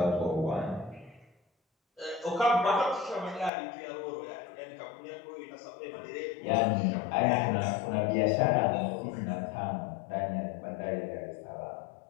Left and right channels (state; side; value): drops out; right; at 3.5 s